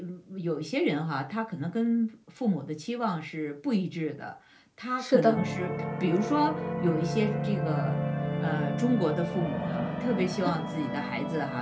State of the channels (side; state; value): both; identical; correlation 1.00